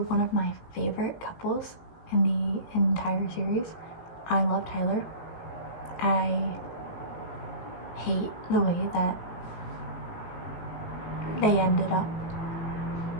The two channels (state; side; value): late; right; 18 ms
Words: of my favorite couples in the entire series. I love Tyler. I hate the way that they ended up.